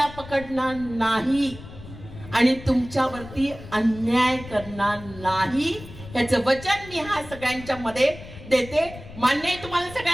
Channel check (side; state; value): left; noise; rumble, 15 dB below the sound